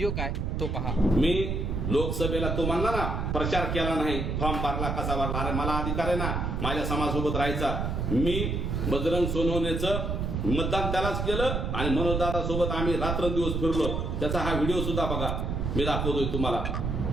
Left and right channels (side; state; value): right; noise; rumble, 1 dB below the sound